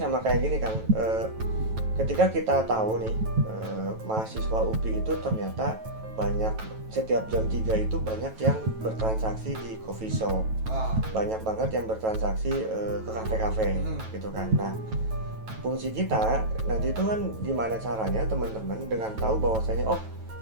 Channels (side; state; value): left; late; 9.2 ms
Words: kayak gini Kang. Ketika kita tahu nih mahasiswa UPI itu ternyata banyak, setiap jam 3 itu banyak yang bertransaksi di coffee shop. Banyak banget yang bertransaksi ke kafe-kafe gitu kan. Nah, fungsi kita nanti itu kan gimana caranya teman-teman dengan tahu bahwasanya